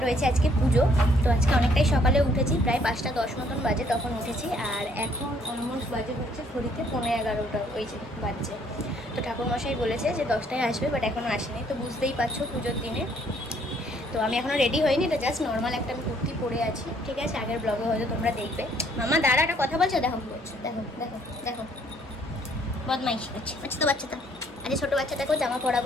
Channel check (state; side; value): normal; both; correlation 0.64